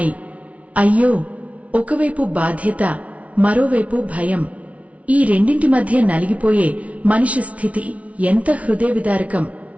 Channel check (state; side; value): late; left; 0.065 ms